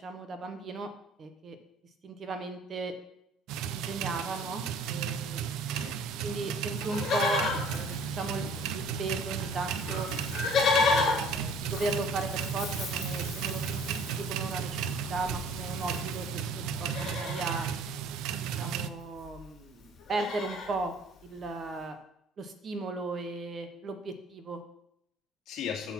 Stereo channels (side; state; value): both; normal; correlation 0.52